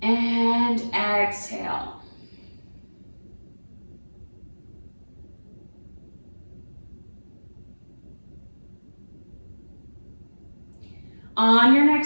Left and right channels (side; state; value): both; inverted; correlation -1.00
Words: and exhale. On your